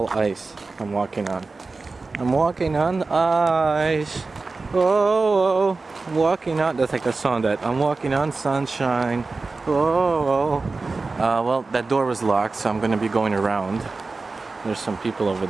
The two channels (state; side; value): quieter; left; 3.8 dB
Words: ice I'm walking on. I'm walking on ice. Oh, I'm walking on. That's like the song that I'm walking on sunshine. Oh. Well, that door was locked, so I'm going to be going around. There's some people over